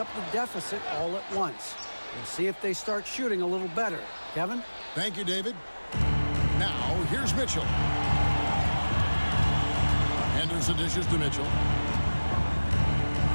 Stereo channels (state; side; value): inverted; both; correlation -1.00